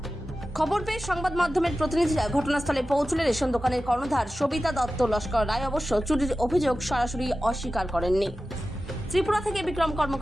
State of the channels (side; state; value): both; normal; correlation 0.94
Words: খবর পেয়ে সংবাদ মাধ্যমের প্রতিনিধিরা ঘটনাস্থলে পৌঁছলে রেশন দোকানের কর্ণধার সবিতা দত্ত লস্কর রায় অবশ্য চুরির অভিযোগ সরাসরি অস্বীকার করেননি। ত্রিপুরা থেকে বিক্রম